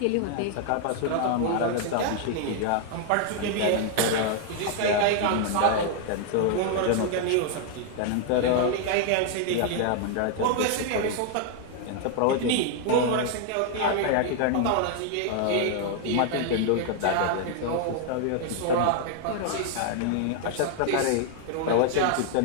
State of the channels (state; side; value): different; both; correlation 0.00